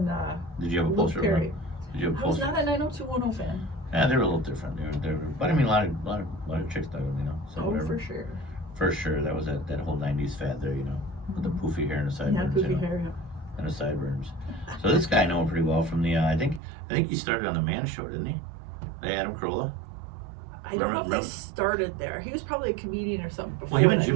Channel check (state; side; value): drops out; left; at 16.6 s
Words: Did you have a poster? Did you have a poster? I was not a 90210 fan. Yeah, they were a little different. But I mean, a lot of chicks dug them, you know. So for sure. For sure, that was that whole '90s fad there, you know, with the poofy hair and the sideburns. Yeah, poofy hair. Yeah. And the sideburns. So this guy I know him pretty well from the. I think he started on the Man Show, didn't he? Adam Carolla. I don't know if they started there. He was probably a comedian or something before. Well, him and